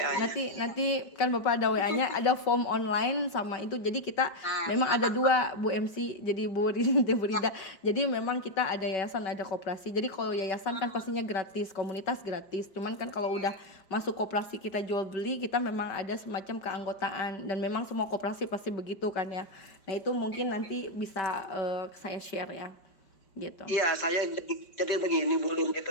nanti kan Bapak ada WA-nya, ada form online sama itu. Jadi kita memang ada dua Bu MC, jadi Bu Rida. Jadi memang kita ada yayasan, ada koperasi. Jadi kalau yayasan kan pastinya gratis, komunitas gratis. Cuman kan kalau udah masuk koperasi kita jual beli, kita memang ada semacam keanggotaan, dan memang semua koperasi pasti begitu kan ya. Nah itu mungkin nanti bisa saya share ya gitu. Iya, saya jadi begini Bu Lin, gitu,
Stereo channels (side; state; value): right; late; 5.1 ms